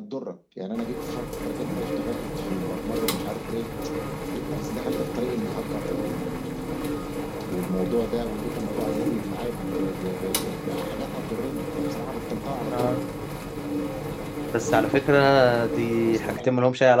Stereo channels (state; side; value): identical; both; correlation 1.00